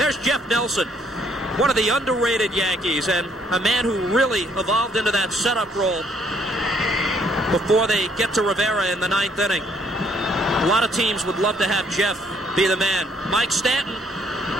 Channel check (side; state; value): both; normal; correlation 0.66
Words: Jeff Nelson, one of the underrated Yankees, and a man who really evolved into that setup role before they get to Rivera in the 9th inning. A lot of teams would love to have Jeff be the man. Mike Stanton,